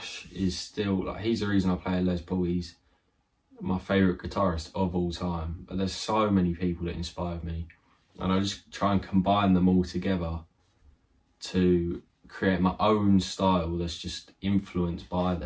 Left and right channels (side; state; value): both; identical; correlation 1.00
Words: is still, like, he's the reason I play Les Paul. He's my favourite guitarist of all time. But there's so many people that inspired me, and I just try and combine them all together to create my own style that's just influenced by